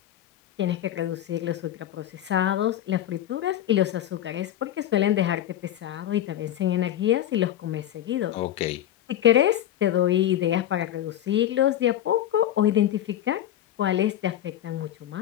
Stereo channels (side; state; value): right; quieter; 11.9 dB